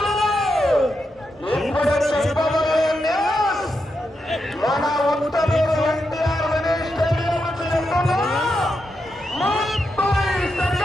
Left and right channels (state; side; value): normal; both; correlation 0.85